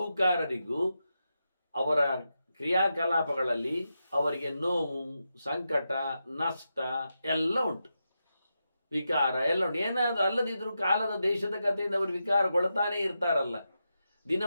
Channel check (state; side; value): inverted; both; correlation -0.87